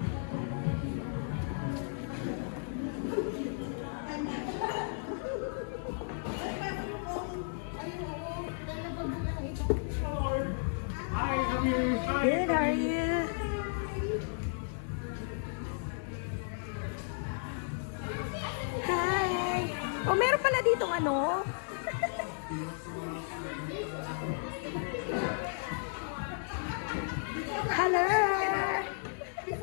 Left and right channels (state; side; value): silent; right; digital silence